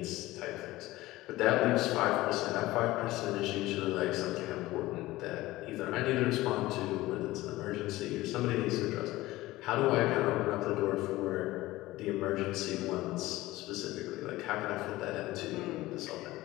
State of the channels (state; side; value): quieter; right; 17.9 dB